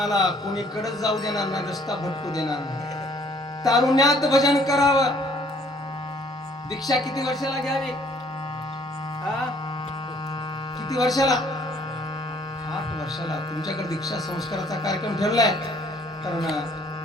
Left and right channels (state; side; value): normal; both; correlation 0.60